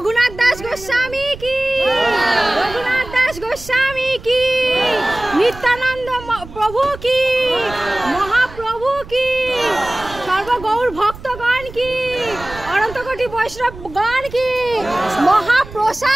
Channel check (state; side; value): noise; right; rumble, 16 dB below the sound